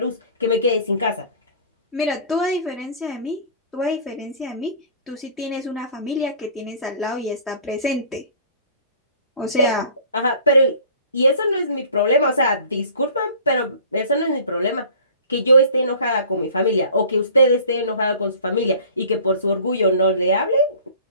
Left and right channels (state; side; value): inverted; both; correlation -0.46